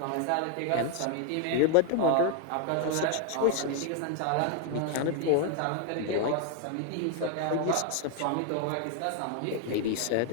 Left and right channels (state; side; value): different; both; correlation 0.00